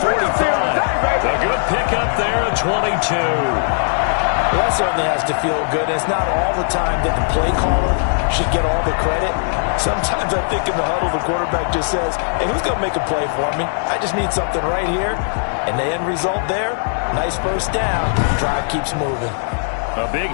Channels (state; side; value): silent; right; digital silence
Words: A good pickup there at 22. Well, that certainly has to feel good. It's not all the time that the play caller should get all the credit. Sometimes I think in the huddle, the quarterback just says, hey, who's going to make a play for me? I just need something right here. And the end result there, nice first down. Drive keeps moving. A big